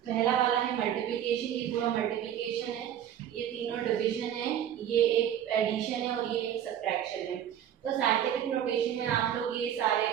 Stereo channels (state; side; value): quieter; left; 10.2 dB